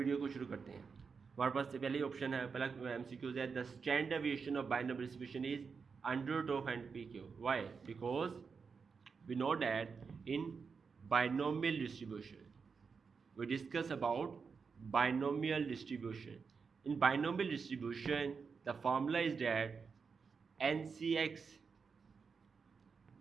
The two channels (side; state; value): left; quieter; 5.4 dB